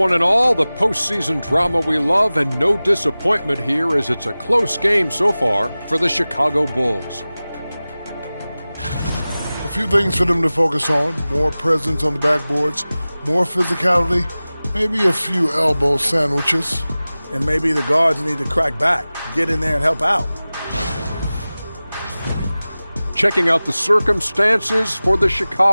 and all. The postseason drama we love, and no disappointment here as it's a close game so far for the Chicago Bulls. A few things for them to focus on. More presence on the backboards, more physicality, maybe a few elbow sandwiches. And maybe the guards need to crack back, get in there and help out. Checking out the circumstances for the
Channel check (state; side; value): inverted; both; correlation -0.98